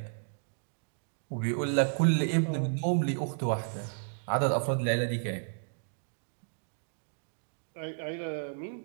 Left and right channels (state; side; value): silent; left; digital silence